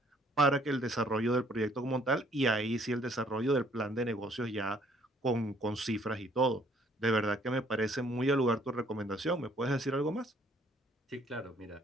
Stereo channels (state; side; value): normal; both; correlation 0.62